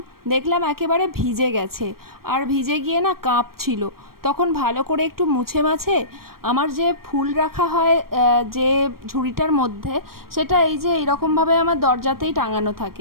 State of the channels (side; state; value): left; late; 0.93 ms